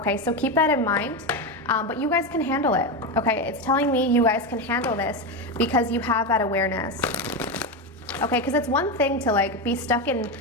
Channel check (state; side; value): normal; both; correlation 0.14